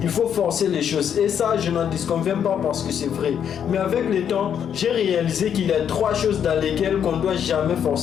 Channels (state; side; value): quieter; right; 8.5 dB